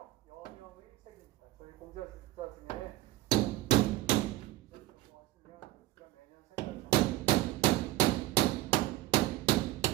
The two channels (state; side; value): quieter; left; 16.4 dB